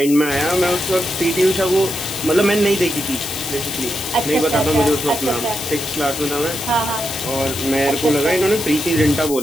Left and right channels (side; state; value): left; noise; hiss, 8 dB below the sound